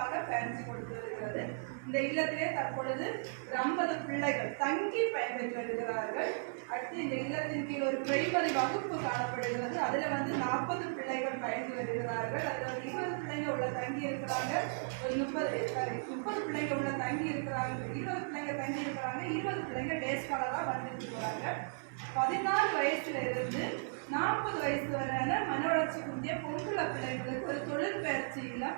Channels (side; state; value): left; silent; 54 dB below the other